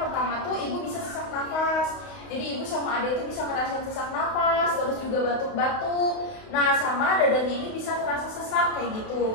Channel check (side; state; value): right; late; 32 ms